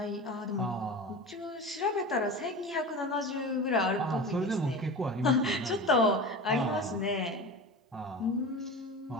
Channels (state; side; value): normal; both; correlation 0.30